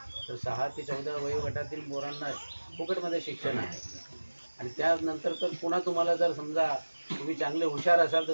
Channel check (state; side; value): inverted; both; correlation -1.00